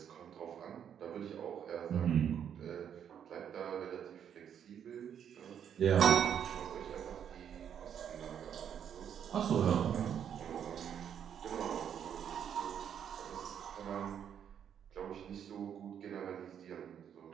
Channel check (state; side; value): quieter; left; 8.7 dB